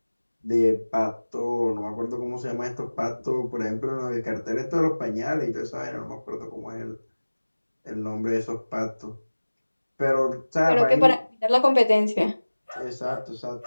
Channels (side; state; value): both; inverted; correlation -1.00